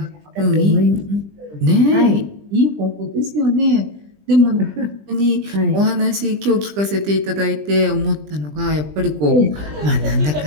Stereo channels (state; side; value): late; left; 20 ms